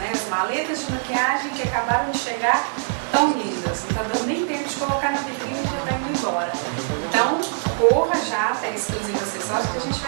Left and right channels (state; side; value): silent; left; 61 dB below the other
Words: As maletas de maquiagem que acabaram de chegar tão lindas, não está dando nem tempo de colocar na vitrine e já está indo embora. Então, corra já até Exclusiva Acessórios que a gente